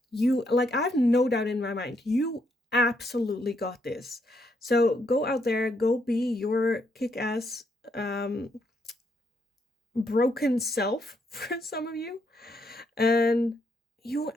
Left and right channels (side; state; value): both; normal; correlation 0.76